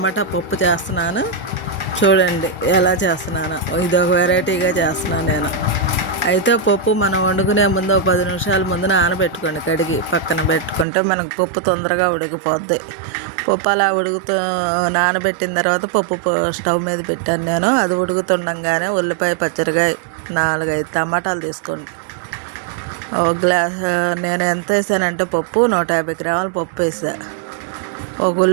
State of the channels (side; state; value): left; drops out; at 10.9 s